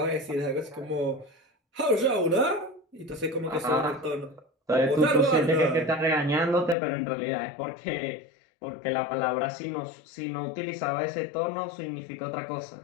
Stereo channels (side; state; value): right; drops out; at 6.8 s